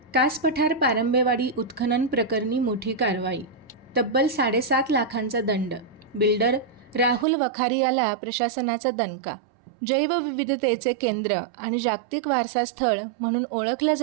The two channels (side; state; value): left; drops out; at 7.2 s